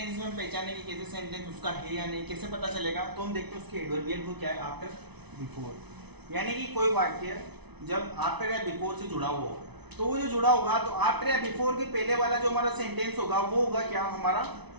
में हम पहचानेंगे कैसे सेंटेंस उसका है या नहीं, कैसे पता चलेगा, तो हम देखते हैं उसके एडवर्बियल को क्या है, आफ्टर, बिफोर। यानी कि कोई वाक्य जब आफ्टर या बिफोर से जुड़ा हुआ हो, तो वो जो जुड़ा होगा तो आफ्टर या बिफोर के पहले वाला जो हमारा सेंटेंस होगा वो होगा क्या, हमारा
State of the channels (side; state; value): left; late; 0.99 ms